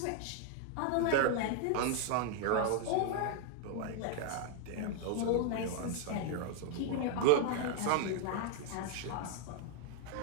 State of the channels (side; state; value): both; different; correlation 0.00